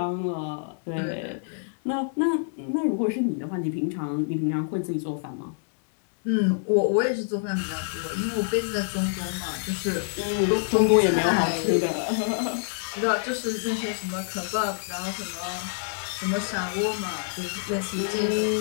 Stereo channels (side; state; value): right; silent; 60 dB below the other